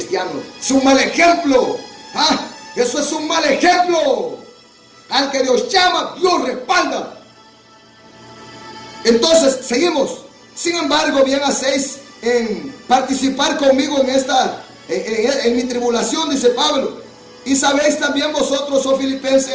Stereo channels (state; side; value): identical; both; correlation 1.00